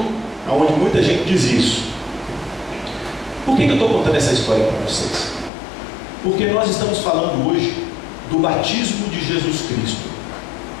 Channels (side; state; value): right; drops out; at 5.5 s